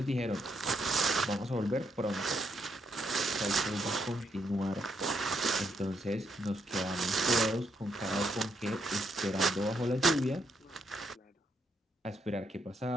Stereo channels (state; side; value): normal; both; correlation 0.77